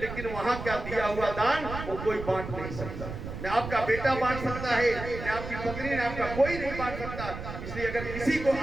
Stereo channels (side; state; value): right; noise; rumble, 8 dB below the sound